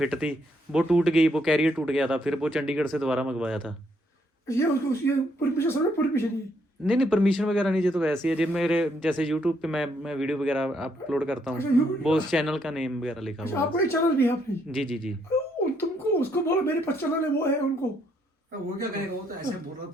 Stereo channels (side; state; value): both; normal; correlation 0.72